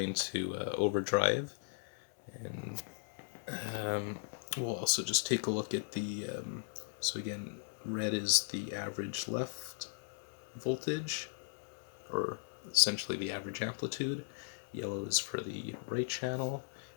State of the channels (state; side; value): silent; right; digital silence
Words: into overdrive. And we'll also just take a look at the, so again, red is the average left voltage, or essentially the average amplitude. Yellow is for the right channel,